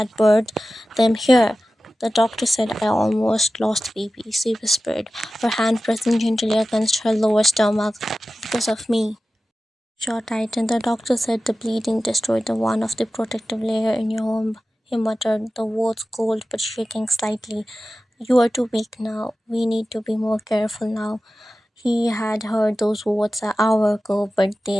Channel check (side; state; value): both; normal; correlation 0.95